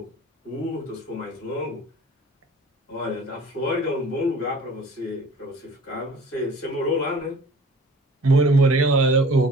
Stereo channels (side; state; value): both; normal; correlation 0.46